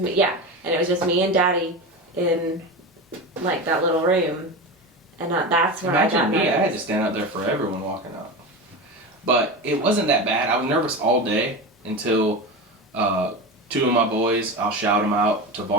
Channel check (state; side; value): normal; both; correlation 0.24